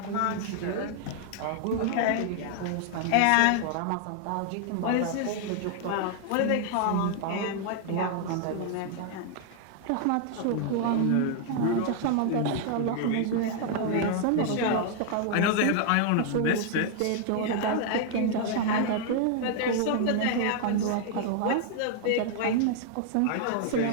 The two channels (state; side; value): different; both; correlation 0.00